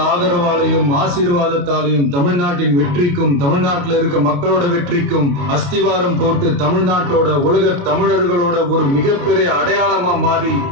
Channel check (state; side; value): late; left; 28 ms